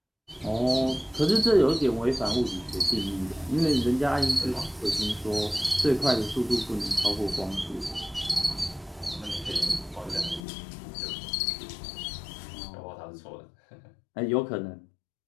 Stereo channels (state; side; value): drops out; right; at 10.4 s